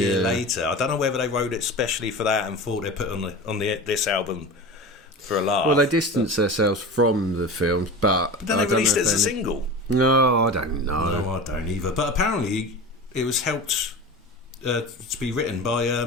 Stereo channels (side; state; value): both; normal; correlation 0.31